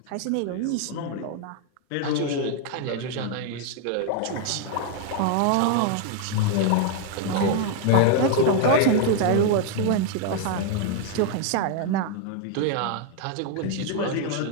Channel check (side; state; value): both; different; correlation 0.00